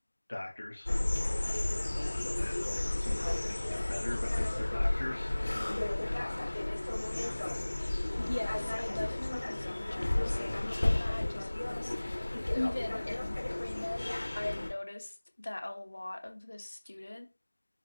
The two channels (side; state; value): both; inverted; correlation -1.00